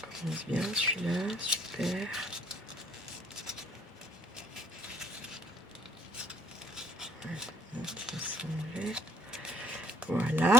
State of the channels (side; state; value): both; normal; correlation 0.62